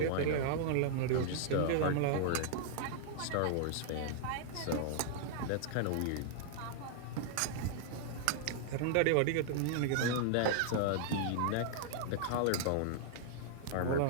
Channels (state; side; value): different; both; correlation -0.01